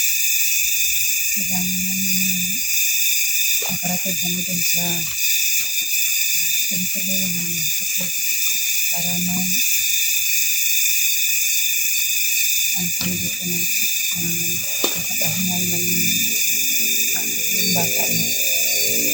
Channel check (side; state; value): both; normal; correlation 0.92